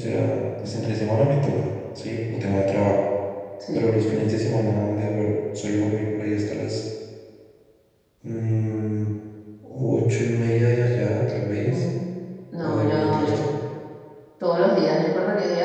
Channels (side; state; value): both; identical; correlation 1.00